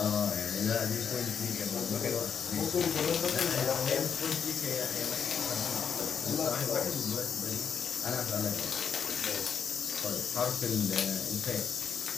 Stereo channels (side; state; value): right; quieter; 7.0 dB